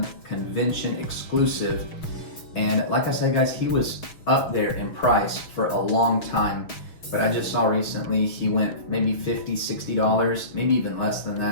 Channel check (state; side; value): late; right; 6.3 ms